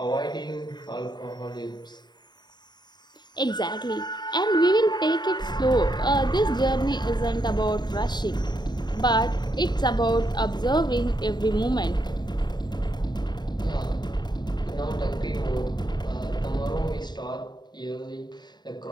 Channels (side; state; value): right; late; 0.21 ms